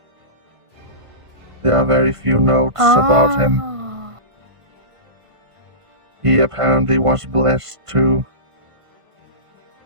There are very few notes about him. He apparently was blessed too.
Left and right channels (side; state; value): left; late; 1.5 ms